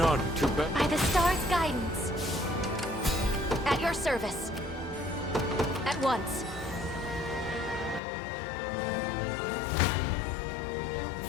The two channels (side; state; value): right; drops out; at 8.0 s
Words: to bet. By the star's guidance. At your service. At once.